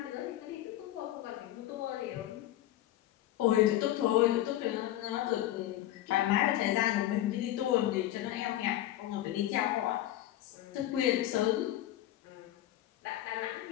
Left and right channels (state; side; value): quieter; right; 13.8 dB